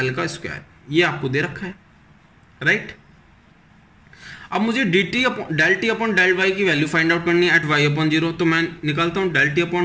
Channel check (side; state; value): both; identical; correlation 1.00